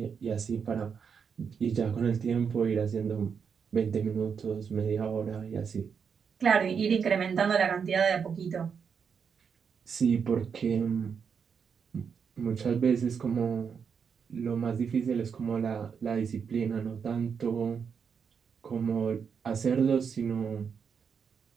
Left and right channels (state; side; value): quieter; left; 6.5 dB